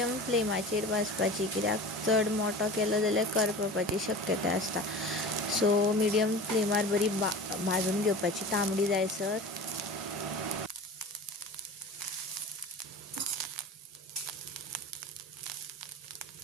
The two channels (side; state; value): both; normal; correlation 0.35